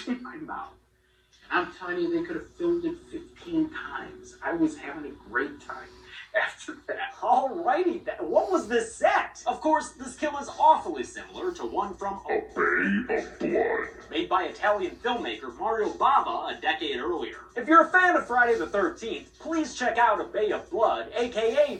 my mouth. And I'm telling you, they could have filmed it 15 times. I was having a great time after that. Alrighty then, what was this set? Of course, this kill is awfully similar to one from A Bay of Blood, made by Italian filmmaker Mario Bava a decade earlier. If you're a fan of Friday the 13th, please check out A Bay of Blood, aka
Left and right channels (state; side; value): identical; both; correlation 1.00